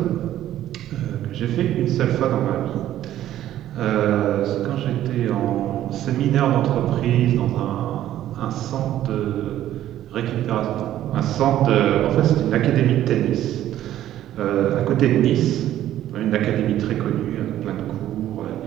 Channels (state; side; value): quieter; left; 12.6 dB